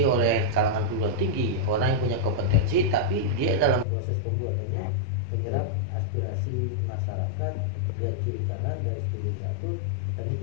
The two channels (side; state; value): right; drops out; at 3.9 s